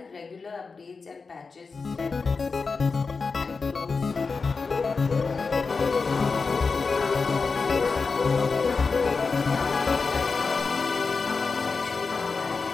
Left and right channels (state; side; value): quieter; right; 4.6 dB